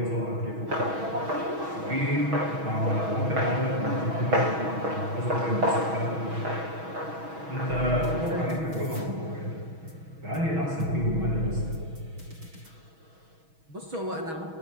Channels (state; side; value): late; left; 6.2 ms